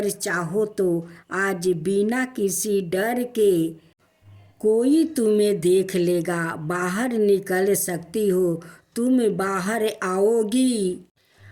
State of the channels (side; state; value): both; identical; correlation 1.00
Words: चाहो तो आज बिना किसी डर के कोई तुम्हें देख लेगा, बाहर निकल सकती हो। तुम बाहर आओगी